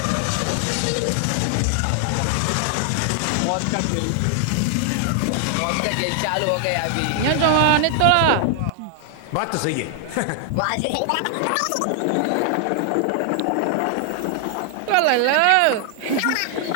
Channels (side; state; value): both; different; correlation 0.00